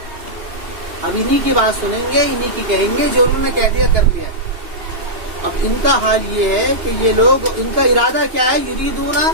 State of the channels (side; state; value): left; late; 2.8 ms